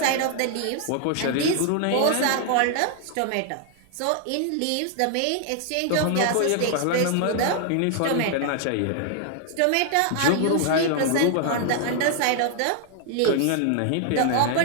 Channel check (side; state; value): both; different; correlation 0.00